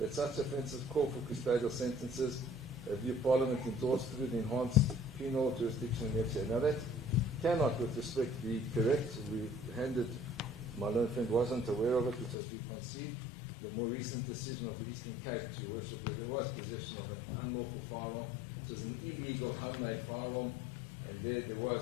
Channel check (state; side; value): drops out; right; at 12.4 s